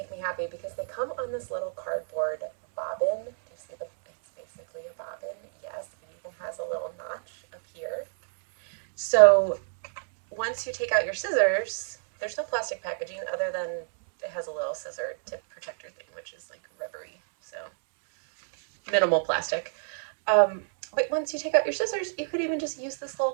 me happy because they come on this little cardboard bobbin. Do you see it's basically a bobbin? Yes, it even has a little notch up here. So once you take out your scissors, there's no plastic packaging other than it has a little scissor tip protector thing, which is like rubbery, so minimal plastic. But once you take out your scissors, you could even just use this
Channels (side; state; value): left; silent; digital silence